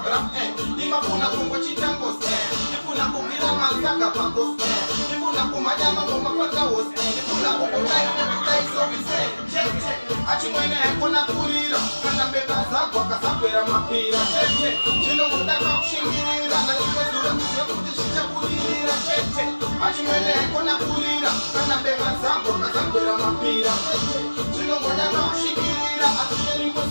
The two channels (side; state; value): both; inverted; correlation -1.00